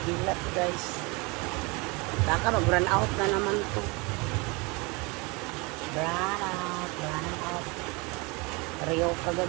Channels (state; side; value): quieter; left; 27.5 dB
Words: Hilat, guys. Baka mag-run out na naman to. Run out, run out. Rio